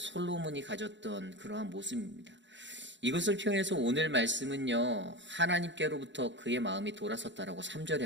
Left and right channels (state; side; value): late; left; 0.53 ms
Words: 가졌던 그러한 모습입니다. 이것을 표현해서 오늘 말씀은요, 하나님께로부터 그의 마음이 돌아섰다라고 3절에